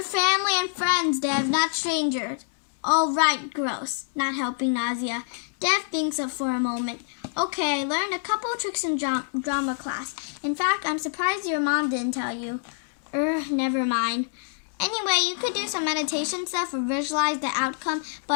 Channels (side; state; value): right; silent; digital silence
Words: family and friends, Dev, not strangers. Oh, right, gross. Not helping nausea. Dev thinks up for a moment. Okay, I learned a couple of tricks in drama class. In fact, I'm surprised your mom didn't tell you. Never mind. Anyway, you could do some meditation stuff or visualize the outcome,